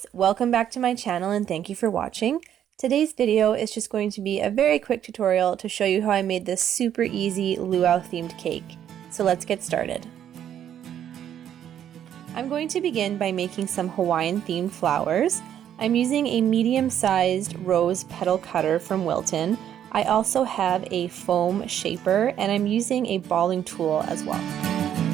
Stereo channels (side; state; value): left; quieter; 10.1 dB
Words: welcome back to my channel and thank you for watching. Today's video is just going to be a very quick tutorial to show you how I made this super easy luau themed cake. So let's get started. I'm going to begin by making some Hawaiian themed flowers. I'm using a medium-sized rose petal cutter from Wilton. I also have a foam shaper and I'm using a balling tool as well.